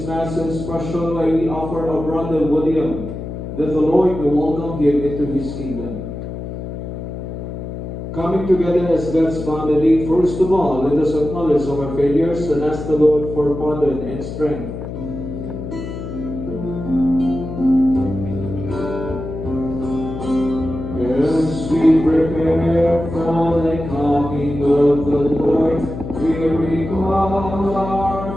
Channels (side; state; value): left; noise; hum, 8 dB below the sound